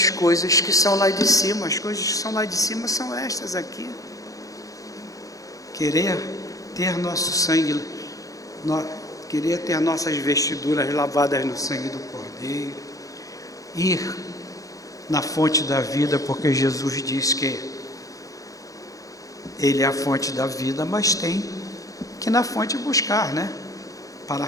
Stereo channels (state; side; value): late; right; 0.17 ms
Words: coisas que são lá de cima. As coisas que são lá de cima são estas aqui. Querer ter nosso sangue, querer ter nossas vestiduras lavadas no sangue do Cordeiro, ir na fonte da vida, porque Jesus diz que Ele é a fonte da vida, mas tem que na fonte buscar, né? Para